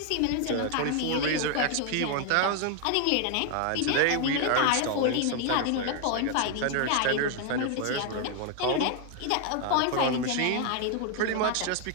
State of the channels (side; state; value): both; different; correlation 0.01